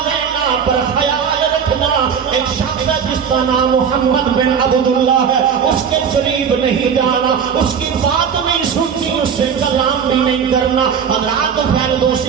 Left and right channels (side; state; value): left; quieter; 7.2 dB